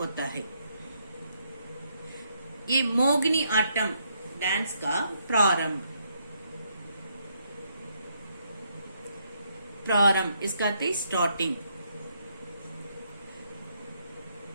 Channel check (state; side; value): inverted; both; correlation -0.75